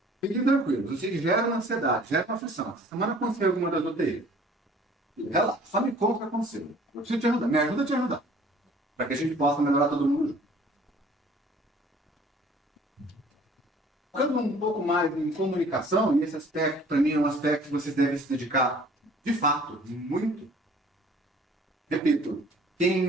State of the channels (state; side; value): normal; both; correlation 0.52